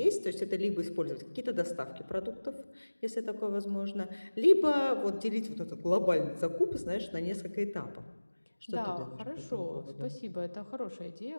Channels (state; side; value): inverted; both; correlation -1.00